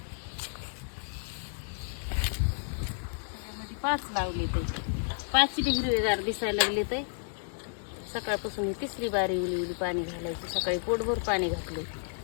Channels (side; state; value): right; silent; digital silence